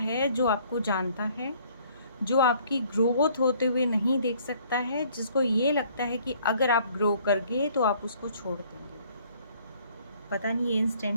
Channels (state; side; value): inverted; both; correlation -0.59